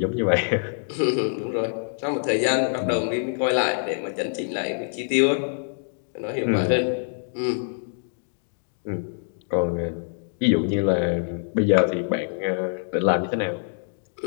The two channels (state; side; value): silent; right; digital silence